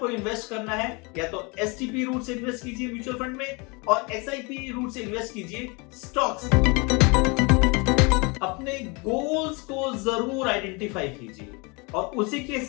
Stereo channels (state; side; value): quieter; right; 29.1 dB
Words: इन्वेस्ट करना है या तो STP रूट से इन्वेस्ट कीजिए म्यूचुअल फंड में और SIP रूट से इन्वेस्ट कीजिए स्टॉक्स। अपने गोल्स को जरूर आइडेंटिफाई कीजिए और उसी के